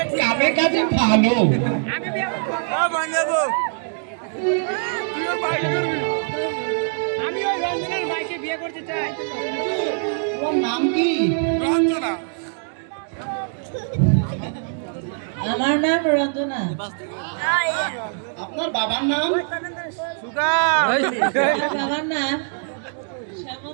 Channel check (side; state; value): left; silent; digital silence